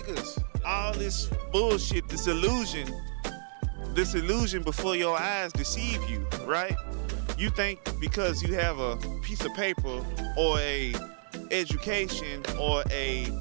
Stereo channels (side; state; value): left; silent; 58 dB below the other